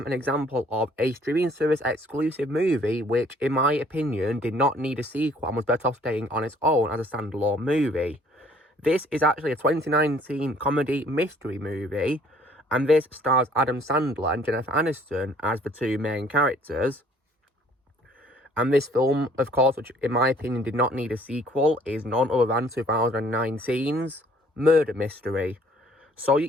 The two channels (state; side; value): normal; both; correlation 0.58